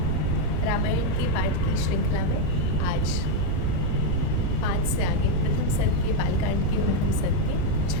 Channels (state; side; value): different; both; correlation 0.02